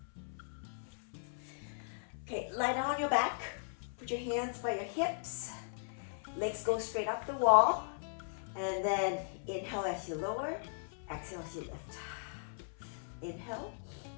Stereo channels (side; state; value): right; silent; 53 dB below the other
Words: Okay, lie down on your back. Put your hands by your hips. Legs go straight up the wall. And then inhale as you lower. Exhale as you lift. Inhale